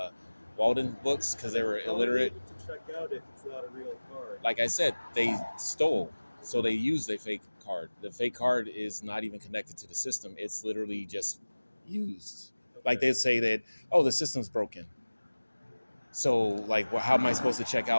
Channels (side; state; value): both; inverted; correlation -1.00